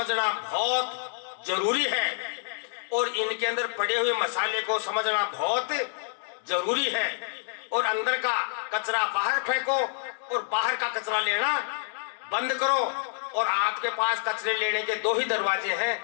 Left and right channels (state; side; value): silent; right; digital silence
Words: बहुत जरूरी है और इनके अंदर पड़े हुए मसाले को समझना बहुत जरूरी है। और अंदर का कचरा बाहर फेंको और बाहर का कचरा लेना बंद करो। और आपके पास कचरे लेने के 2 ही दरवाजे